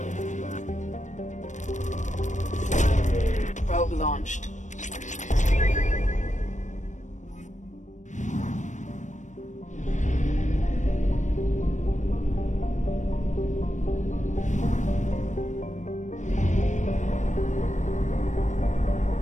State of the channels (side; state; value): right; late; 0.35 ms